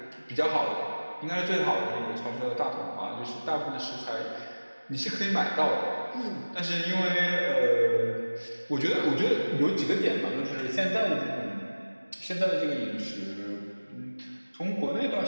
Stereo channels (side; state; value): both; inverted; correlation -1.00